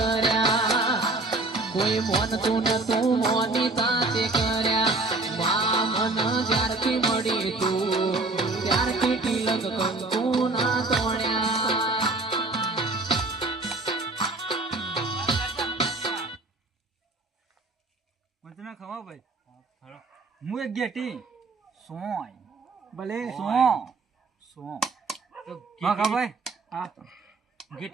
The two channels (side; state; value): left; quieter; 3.3 dB